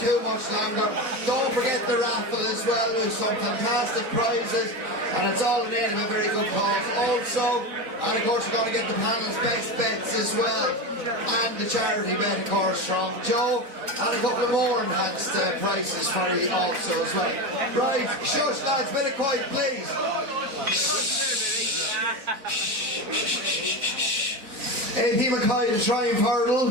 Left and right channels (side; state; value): left; late; 4.0 ms